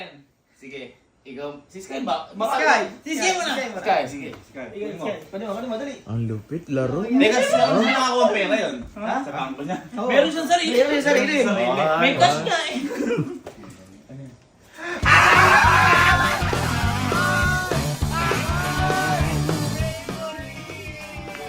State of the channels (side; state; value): both; identical; correlation 1.00